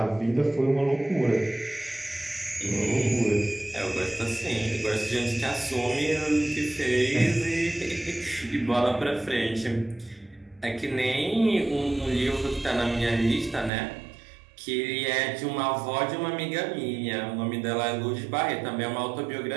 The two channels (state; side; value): drops out; left; at 13.7 s